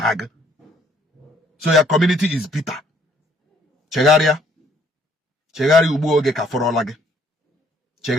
So your community is bitter. Chegaria ubuoge kaforolage.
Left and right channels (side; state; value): both; normal; correlation 0.64